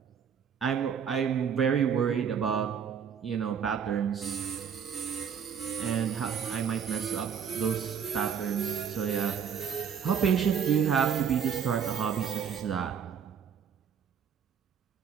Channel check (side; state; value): left; quieter; 7.6 dB